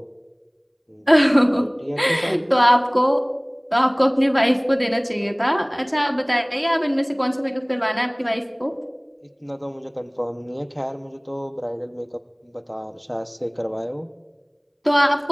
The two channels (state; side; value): identical; both; correlation 1.00